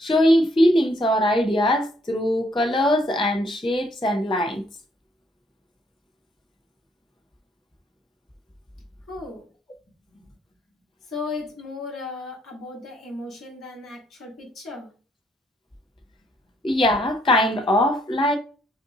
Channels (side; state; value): both; normal; correlation 0.70